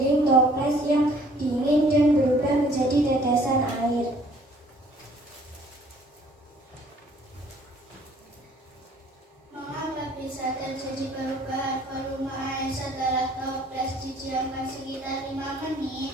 toples yang dingin dan berubah menjadi tetesan air. Mengapa bisa terjadi perubahan volume air setelah toples didiamkan sekitar 5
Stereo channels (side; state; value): both; normal; correlation 0.58